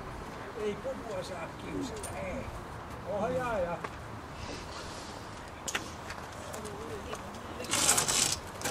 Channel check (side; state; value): both; identical; correlation 1.00